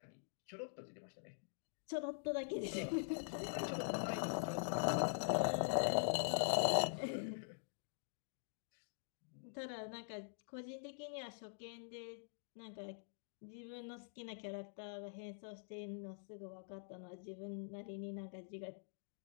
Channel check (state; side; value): silent; right; digital silence